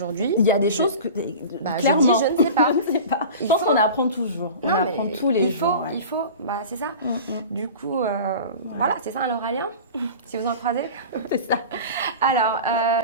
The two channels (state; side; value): inverted; both; correlation -0.35